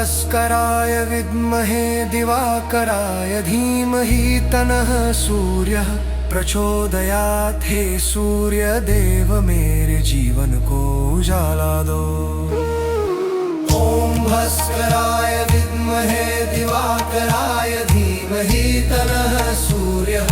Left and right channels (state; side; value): identical; both; correlation 1.00